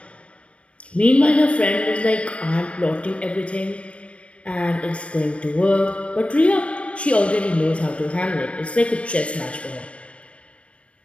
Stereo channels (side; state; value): right; late; 0.061 ms